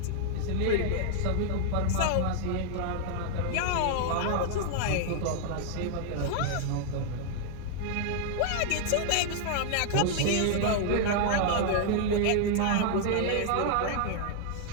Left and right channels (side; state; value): both; different; correlation -0.01